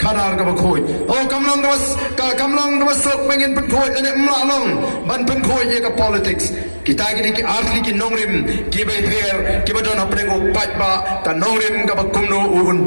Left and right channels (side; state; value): both; inverted; correlation -1.00